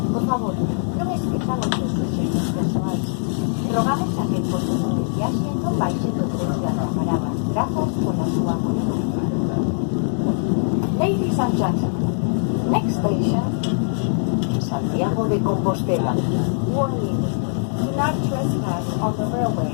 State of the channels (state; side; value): silent; right; digital silence